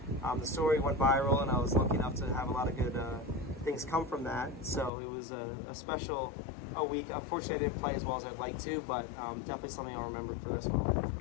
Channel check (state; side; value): drops out; right; at 4.9 s